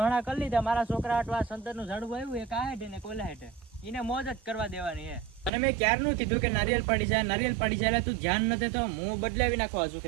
કરી લીધા, મારા છોકરા આટવા સંતરનું ઝાડવું આવ્યું, એક આ હેઠે ને કોલા હેઠે, એને મોજ જ કરવા દેવાની હે. અને મેં ક્યારનું કીધું કે નારિયેલ પાડી જાય તું ધ્યાન નથી તો હું બદલાવી નાખવા છું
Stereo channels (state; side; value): drops out; left; at 5.5 s